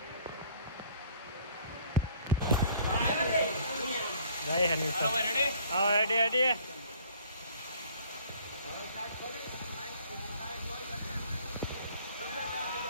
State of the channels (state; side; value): inverted; both; correlation -0.56